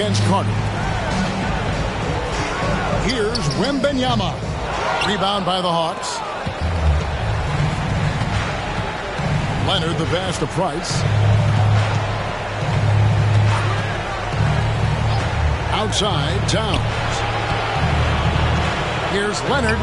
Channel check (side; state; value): both; identical; correlation 1.00